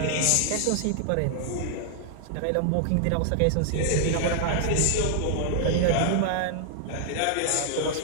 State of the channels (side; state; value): both; different; correlation 0.00